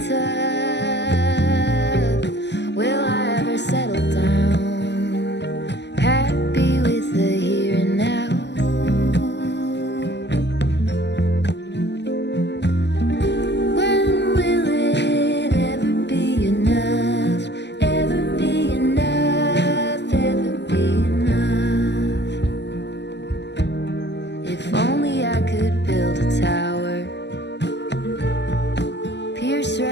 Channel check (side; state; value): right; late; 0.50 ms